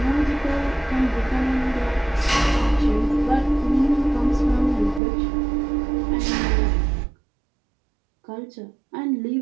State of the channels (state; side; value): drops out; left; at 5.0 s